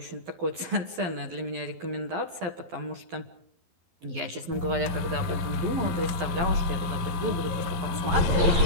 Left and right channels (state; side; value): late; left; 12 ms